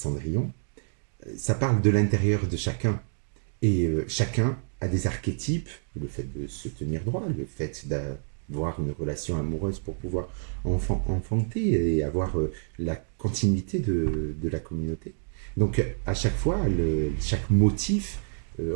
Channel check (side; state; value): left; silent; digital silence